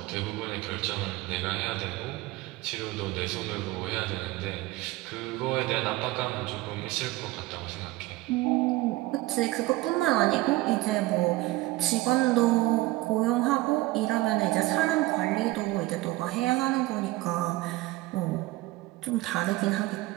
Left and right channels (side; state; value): left; quieter; 19.0 dB